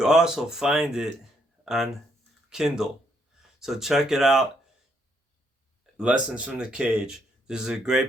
also find it on Kindle. So check it out. Lessons from the Cage. This is a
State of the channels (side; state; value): both; normal; correlation 0.73